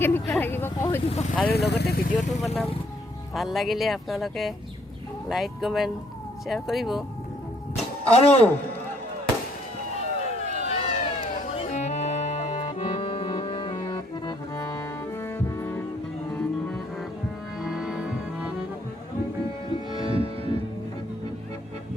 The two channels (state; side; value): normal; both; correlation 0.67